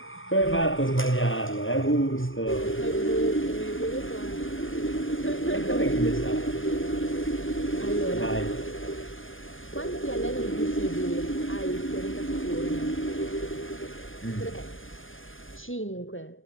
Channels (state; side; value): late; right; 0.58 ms